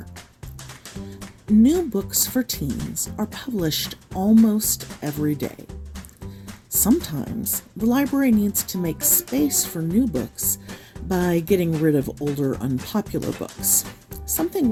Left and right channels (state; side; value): identical; both; correlation 1.00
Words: New books for teens are published almost every day. Sometimes the library needs to make space for new books by getting rid of older unpopular books, something